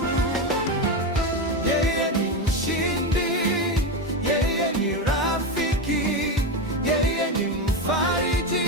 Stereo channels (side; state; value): both; normal; correlation 0.14